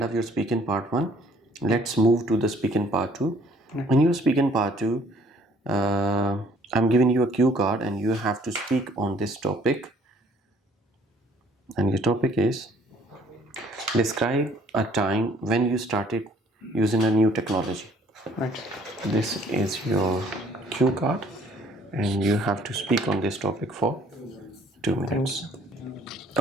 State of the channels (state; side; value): normal; both; correlation 0.60